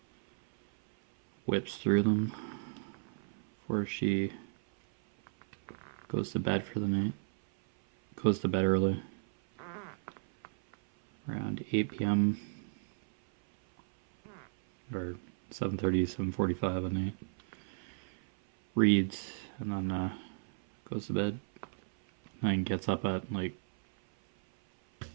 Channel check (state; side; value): silent; left; 55 dB below the other